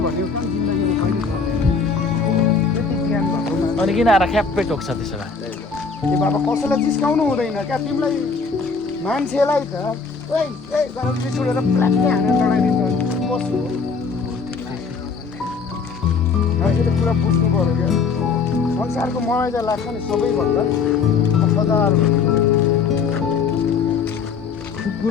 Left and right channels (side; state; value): right; quieter; 5.1 dB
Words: भन्यो कम जिन्दगीमा कहिले गर्दैन। त्यति ज्ञान भएको अनि किन आएर ख्याप्पै टोक्छ त्यसो भए? ए बाबा कसैलाई जिस्काउनु हुँदैन क्या, तिमीलाई मान्छेलाई त गरम रिस उठेर प्लाक्कै हानेर लडाइदिन्छ पशु हो। मान्छेले कुरा बुझ्नु पऱ्यो क्या। संसारको मलाई चाहिँ लाग्छ नि सबैभन्दा वफादार